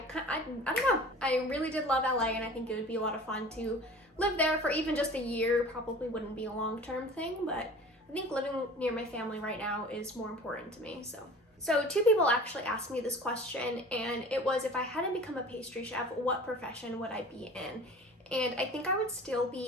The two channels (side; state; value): both; normal; correlation 0.41